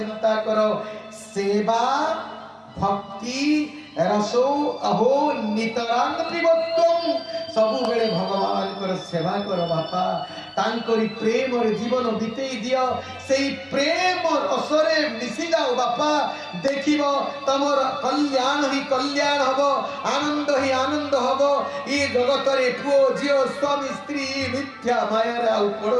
करो सेवा भक्ति रसो अहो नितरांग पिबत्वम सबु बेले भगवान को सेवा करो बापा तांकरी प्रेम रे जीवन बितेई दियो सेई प्रेम रसरे मिसी जाओ बापा देखिबो तमर कल्याण ही कल्याण हबो आनंद ही आनंद हबो ई जगत रे पुओ जियो स्वामी स्त्री मिथ्या माया रे आउ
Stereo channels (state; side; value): identical; both; correlation 1.00